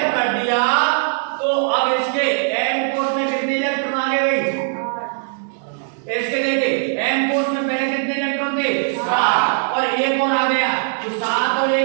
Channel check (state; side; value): silent; left; 66 dB below the other